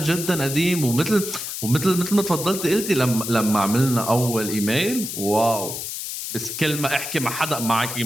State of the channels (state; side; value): noise; left; hiss, 6 dB below the sound